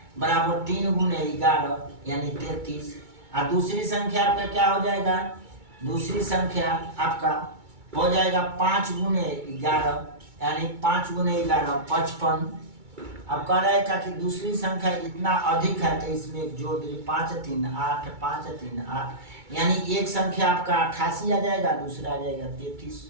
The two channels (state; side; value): late; left; 2.2 ms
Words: बराबर 3 × 11 यानी 33, और दूसरी संख्या आपका क्या हो जाएगा, दूसरी संख्या आपका हो जाएगा 5 × 11 यानी 5 × 11 55। अब कह रहा है कि दूसरी संख्या इतना अधिक है, तो इसमें एक जोड़ दीजिए, 5 × 3 = 8, 5 × 3 = 8, यानी एक संख्या आपका 88 आ जाएगा, दूसरा आ जाएगा